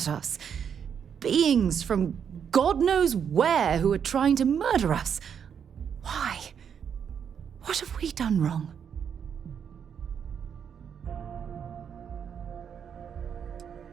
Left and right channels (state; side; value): quieter; left; 7.7 dB